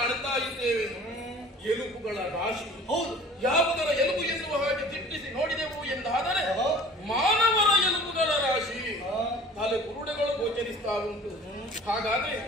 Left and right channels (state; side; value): normal; both; correlation 0.46